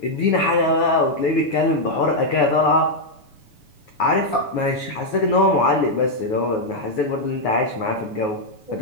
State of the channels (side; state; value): right; late; 7.0 ms